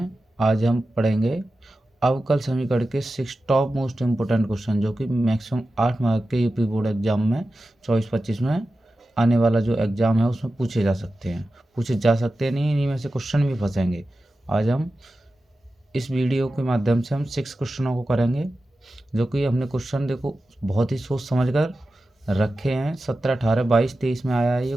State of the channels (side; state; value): both; normal; correlation 0.93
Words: आज हम पढ़ेंगे अवकल समीकरण के 6 टॉप मोस्ट इम्पोर्टेंट क्वेश्चन, जो कि मैक्सिमम 8 मार्क के यूपी बोर्ड एग्ज़ाम में 24-25 में आने वाला जो एग्ज़ाम है उसमें पूछे जा सकते हैं नहीं, इन्हीं में से क्वेश्चन भी फंसेंगे। आज हम इस वीडियो के माध्यम से हम 6 क्वेश्चनों को करेंगे, जो कि हमने क्वेश्चन देखो बहुत ही सोच समझ कर रखे हैं। 17, 18, 22, 23 में आया है ये